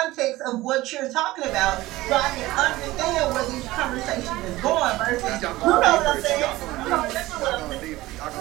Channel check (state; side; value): quieter; left; 18.0 dB